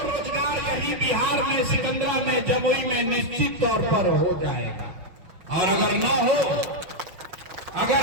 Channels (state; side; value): late; left; 5.5 ms